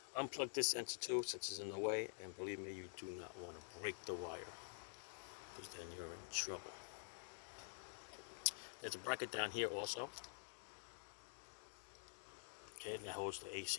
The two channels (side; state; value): right; silent; digital silence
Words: Unplug this sensor too, since it's in the way, and believe me, you do not want to break the wire, because then you're in trouble. There's a bracket down here also. Okay, that holds the